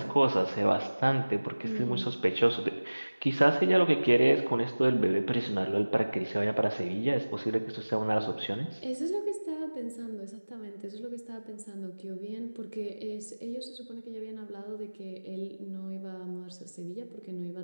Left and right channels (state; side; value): inverted; both; correlation -1.00